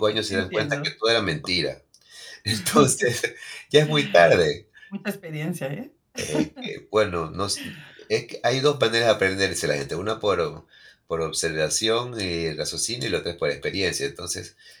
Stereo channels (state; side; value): identical; both; correlation 1.00